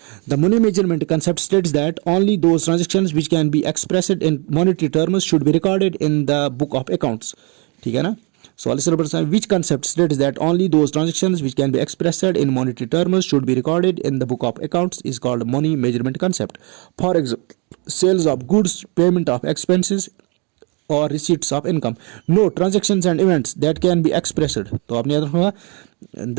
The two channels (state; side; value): quieter; left; 32.3 dB